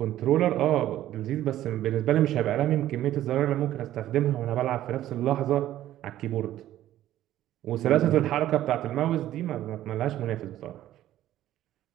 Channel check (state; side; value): quieter; left; 13.2 dB